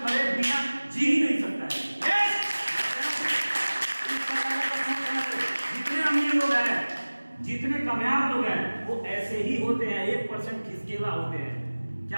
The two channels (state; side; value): inverted; both; correlation -1.00